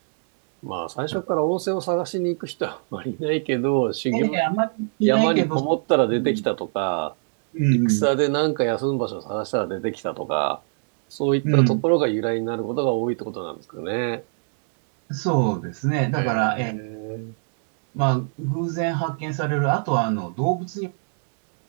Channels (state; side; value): silent; left; digital silence